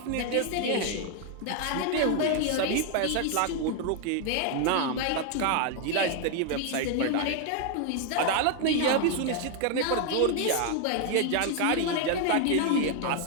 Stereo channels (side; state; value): both; different; correlation 0.01